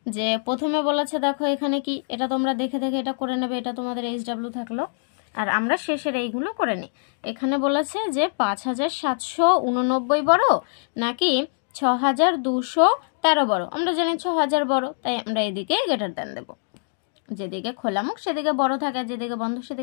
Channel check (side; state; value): right; silent; digital silence